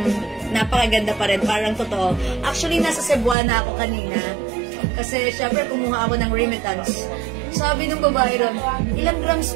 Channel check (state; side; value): drops out; left; at 3.4 s